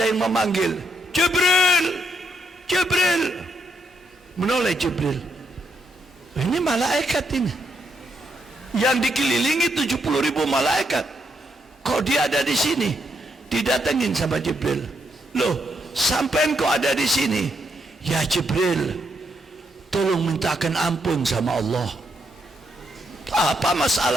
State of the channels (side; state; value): both; normal; correlation 0.78